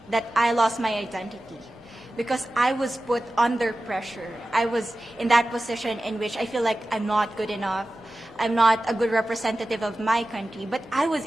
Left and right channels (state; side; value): normal; both; correlation 0.95